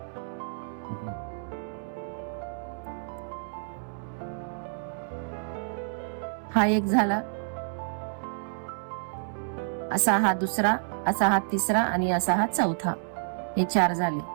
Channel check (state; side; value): silent; left; digital silence